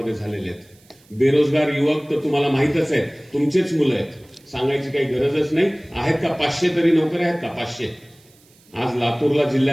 झालेले आहेत. बेरोजगार युवक तर तुम्हाला माहितच आहेत, तुमचेच मुलं आहेत, सांगायची काही गरजच नाही. आहेत का 500 तरी नोकऱ्या आहेत का? 500. आज लातूरला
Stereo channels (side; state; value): right; noise; hiss, 30 dB below the sound